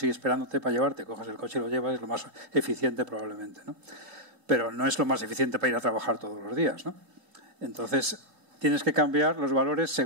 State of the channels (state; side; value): late; left; 3.8 ms